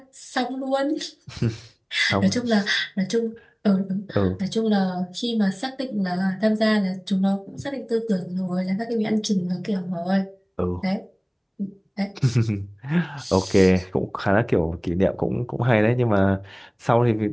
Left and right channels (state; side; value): identical; both; correlation 1.00